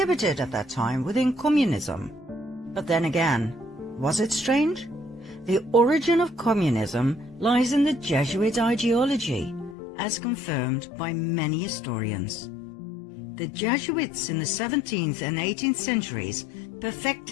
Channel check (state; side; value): drops out; right; at 9.8 s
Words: at that time within communism. But then again, was it strange? The origin of communism lies in the Jesuit ideology, as confirmed by many historians. The Jesuits in the 17th and 18th centuries